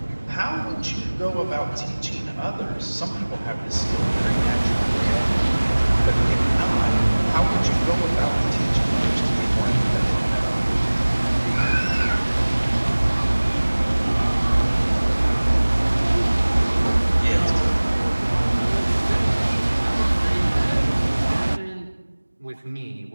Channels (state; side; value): inverted; both; correlation -1.00